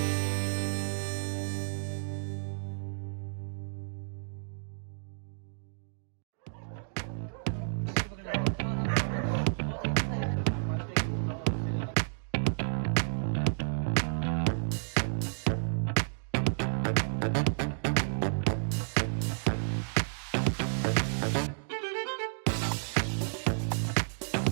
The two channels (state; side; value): silent; left; digital silence